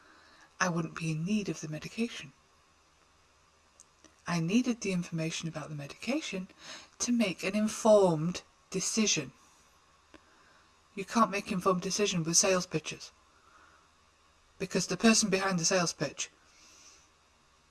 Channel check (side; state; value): both; identical; correlation 1.00